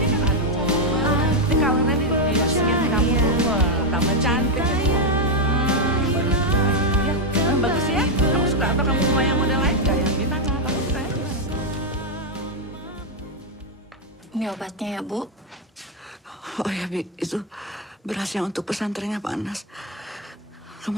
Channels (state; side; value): normal; both; correlation 0.02